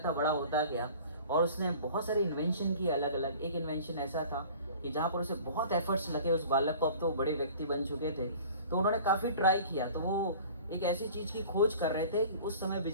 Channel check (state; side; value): inverted; both; correlation -0.45